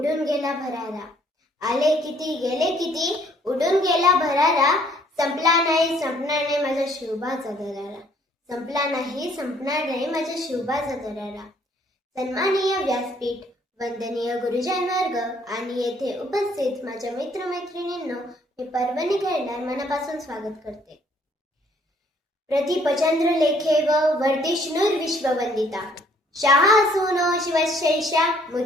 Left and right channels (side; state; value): both; normal; correlation 0.63